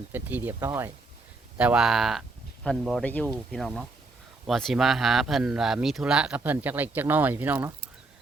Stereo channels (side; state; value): left; quieter; 3.4 dB